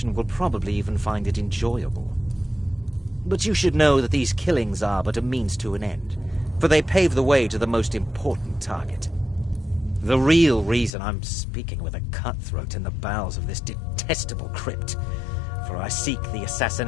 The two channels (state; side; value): drops out; right; at 10.9 s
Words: will probably even find it enjoyable. But you should know that these killings are but a means to an end, for they pave the way to the most important target. The real reason I'm speaking with a cutthroat in the bowels of this detestable crypt, for I seek the